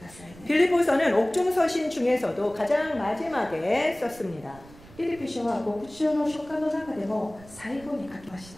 ださいね。 빌립보서는 옥중서신 중에서도 가장 마지막에 썼습니다. ピリピ書は牧師の書簡の中でも最後に書きました。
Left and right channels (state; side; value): noise; right; rumble, 21 dB below the sound